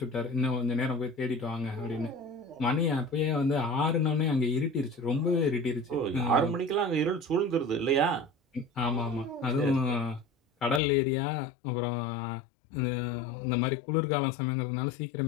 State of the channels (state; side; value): drops out; right; at 10.8 s